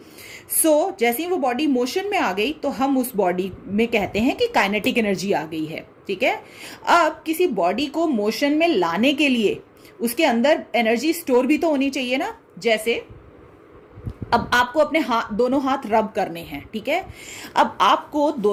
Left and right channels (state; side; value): identical; both; correlation 1.00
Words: जैसे ही वो बॉडी मोशन में आ गई तो हम उस बॉडी में कहते हैं कि काइनेटिक एनर्जी आ गई है, ठीक है। अब किसी बॉडी को मोशन में लाने के लिए उसके अंदर एनर्जी स्टोर भी तो होनी चाहिए ना। जैसे अब आपको अपने दोनों हाथ रब करने हैं, ठीक है। अब आपको